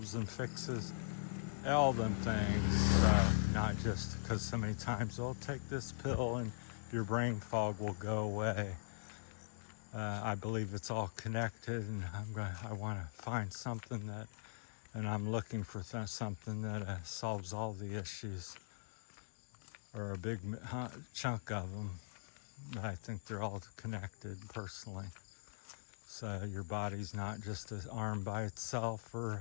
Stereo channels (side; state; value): right; silent; digital silence